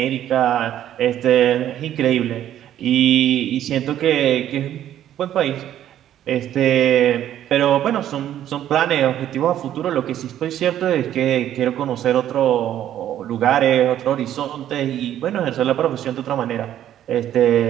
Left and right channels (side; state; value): left; quieter; 11.5 dB